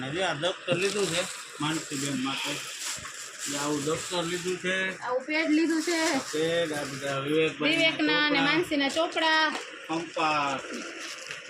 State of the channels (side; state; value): both; identical; correlation 1.00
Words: જે આ દફતર લીધું છે માનસીબેન માટે. જે આવું દફતર લીધું છે, આવું પેડ લીધું છે પેડ, આ બધા વિવેકના અને માનસીના ચોપડા. કંપાસ,